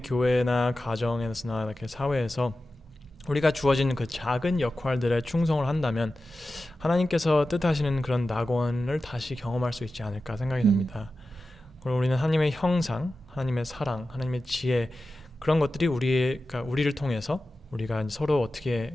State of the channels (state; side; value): normal; both; correlation 0.93